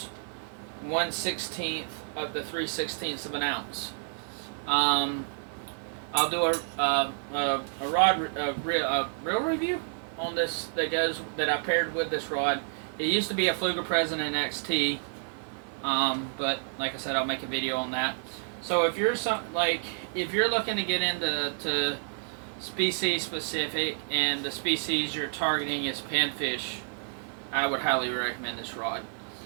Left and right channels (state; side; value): silent; left; digital silence